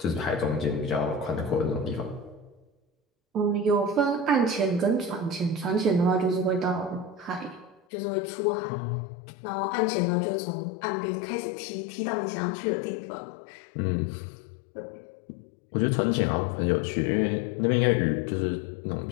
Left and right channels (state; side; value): drops out; right; at 7.8 s